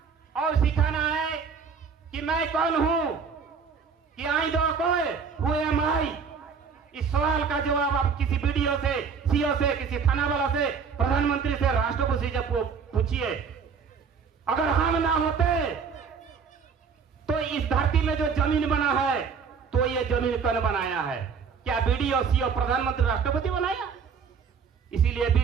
और सिखाना है कि मैं कौन हूं, कि आई दो कोई हु एम आई। इस सवाल का जवाब आप किसी वीडियो से, सीओ से, किसी थाना वाला से, प्रधानमंत्री से, राष्ट्रपति से पूछिए। अगर हम ना होते तो इस धरती में जो जमीन बना है तो ये जमीन कौन बनाया है? क्या वीडियो, सीओ, प्रधानमंत्री, राष्ट्रपति बनाया? इसीलिए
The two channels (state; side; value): quieter; left; 6.0 dB